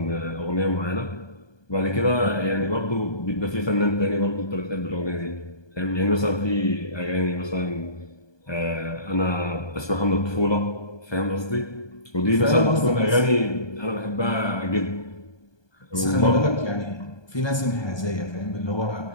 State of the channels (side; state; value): right; late; 1.2 ms